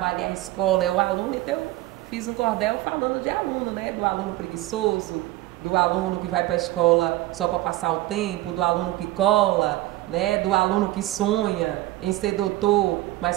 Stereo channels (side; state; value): left; quieter; 16.8 dB